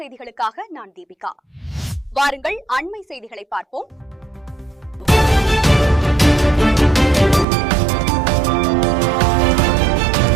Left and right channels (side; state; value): left; drops out; at 7.5 s